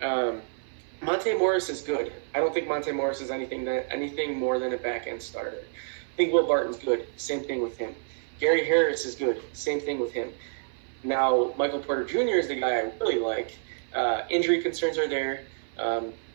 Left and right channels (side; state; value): left; silent; 57 dB below the other